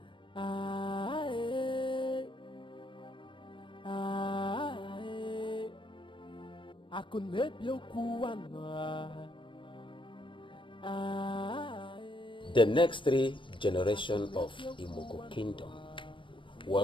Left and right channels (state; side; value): late; right; 0.24 ms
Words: ah, eh, ah, eh. I could make you cool one. The next 3 generations of Imoko Kingdom